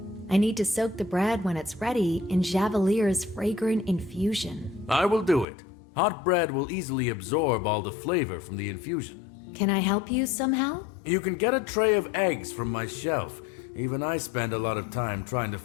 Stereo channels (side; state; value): right; drops out; at 5.5 s